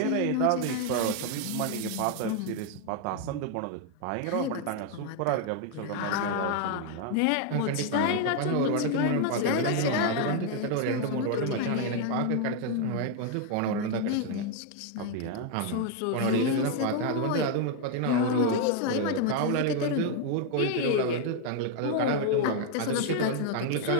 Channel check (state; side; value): different; both; correlation 0.00